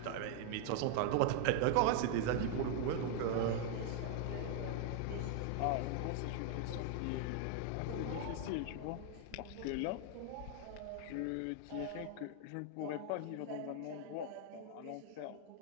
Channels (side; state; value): both; different; correlation 0.00